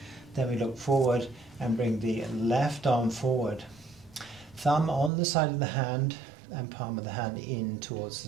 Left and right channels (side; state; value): left; drops out; at 5.1 s